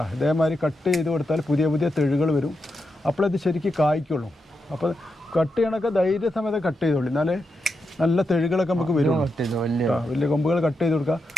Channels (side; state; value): both; normal; correlation 0.86